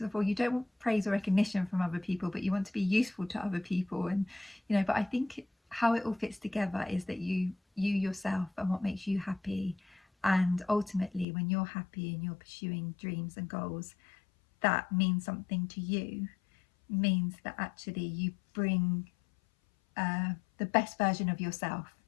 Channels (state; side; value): drops out; right; at 11.2 s